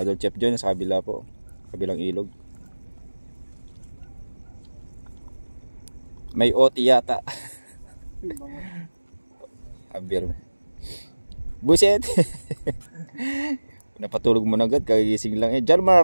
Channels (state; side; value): inverted; both; correlation -1.00